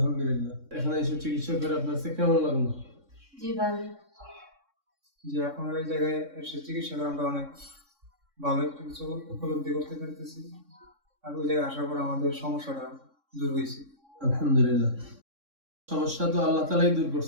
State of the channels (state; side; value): late; left; 3.6 ms